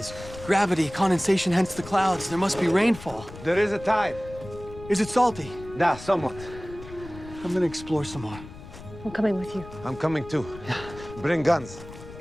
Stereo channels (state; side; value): noise; left; rumble, 15 dB below the sound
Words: gravity, condensation, hence the clouds. There must be rainfall. There is a tide. Is it salty? Nah, somewhat. I'm gonna explore some more. I'm coming with you. I'm coming too. Bring guns.